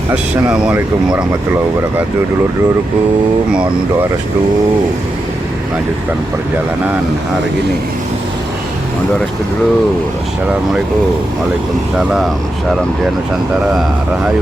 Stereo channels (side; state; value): both; normal; correlation 0.87